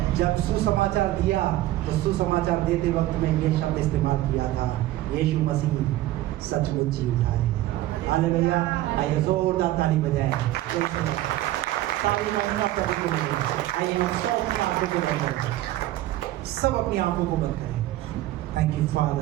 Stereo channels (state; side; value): quieter; left; 15.4 dB